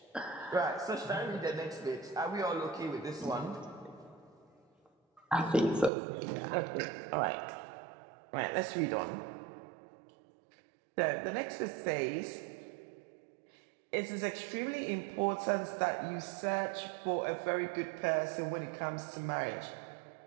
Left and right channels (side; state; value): left; drops out; at 5.9 s